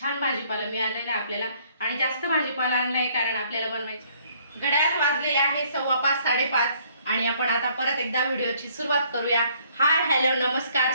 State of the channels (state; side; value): inverted; both; correlation -0.63